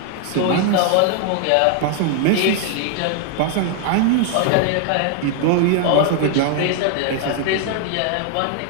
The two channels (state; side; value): different; both; correlation 0.00